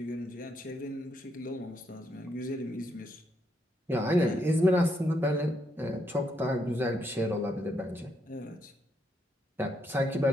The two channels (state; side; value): normal; both; correlation 0.77